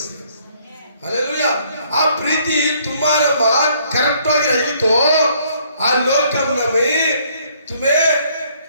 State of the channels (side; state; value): both; inverted; correlation -0.64